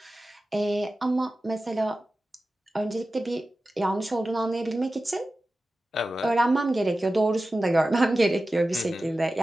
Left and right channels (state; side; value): normal; both; correlation 0.95